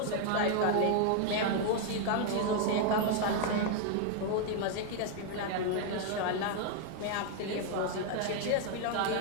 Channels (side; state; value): both; different; correlation 0.00